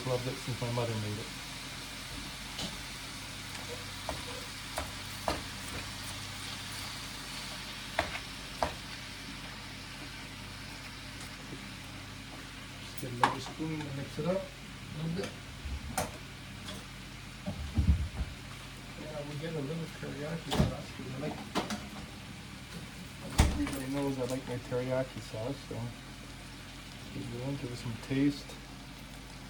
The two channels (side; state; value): both; identical; correlation 1.00